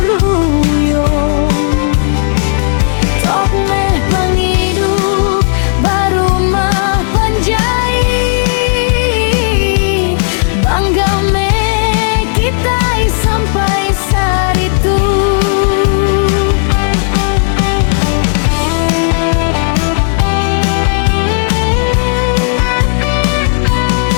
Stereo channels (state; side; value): silent; right; digital silence